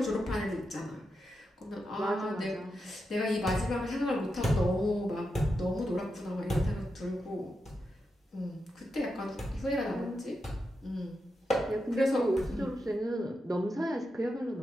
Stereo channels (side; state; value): both; normal; correlation 0.87